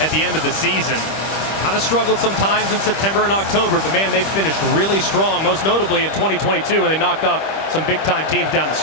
the end of the season. Kind of struggled sometimes in September and October, but man, they've finished really strong, most notably in 2022, when they knocked off some big-time teams down the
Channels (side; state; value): right; late; 25 ms